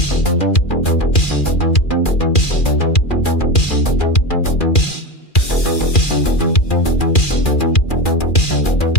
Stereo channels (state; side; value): late; right; 2.4 ms